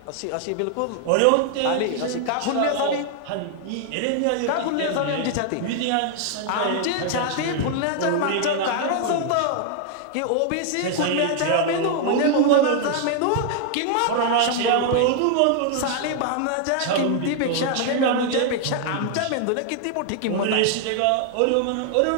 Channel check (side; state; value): both; different; correlation 0.00